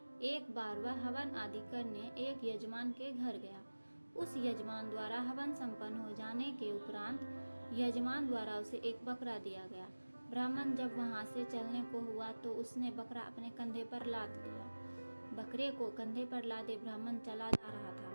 एक बार वह हवन आदि करने एक यजमान के घर गया। उस यजमान द्वारा हवन संपन्न हो जाने के उपरांत यजमान द्वारा उसे एक बकरा दिया गया। ब्राह्मण जब वहां से चलने को हुआ तो उसने बकरा अपने कंधे पर लाद लिया। बकरे को कंधे पर लादे ब्राह्मण चला जा रहा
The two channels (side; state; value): both; inverted; correlation -1.00